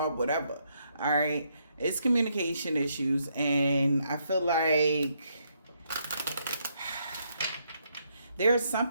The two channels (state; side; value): inverted; both; correlation -0.75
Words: whatever, all right? It's communication issues, and I feel like there's